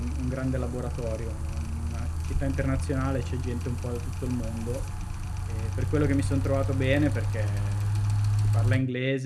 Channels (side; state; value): both; identical; correlation 1.00